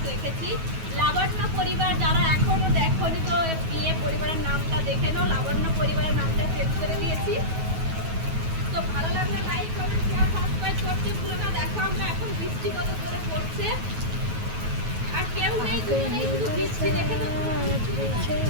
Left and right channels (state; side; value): late; left; 9.3 ms